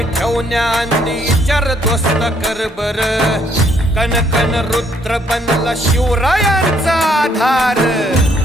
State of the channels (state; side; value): normal; both; correlation 0.68